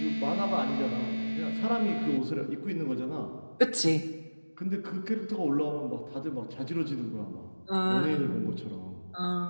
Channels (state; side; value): inverted; both; correlation -1.00